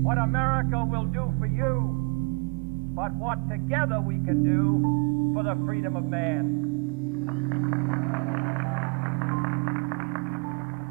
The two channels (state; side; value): quieter; left; 30.6 dB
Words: what America will do for you, but what together we can do for the freedom of man.